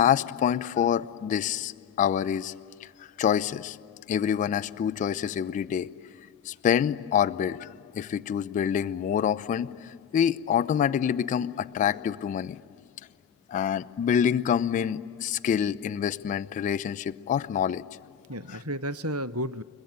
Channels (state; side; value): quieter; right; 8.1 dB